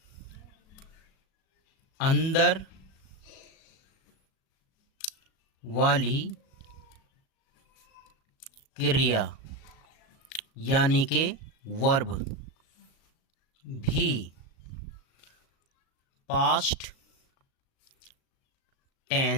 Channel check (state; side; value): late; right; 37 ms